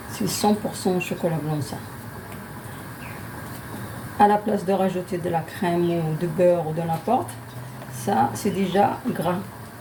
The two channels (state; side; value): identical; both; correlation 1.00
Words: C'est 100% chocolat blanc, ça. À la place de rajouter de la crème ou de beurre ou de n'importe, ça, c'est déjà gras.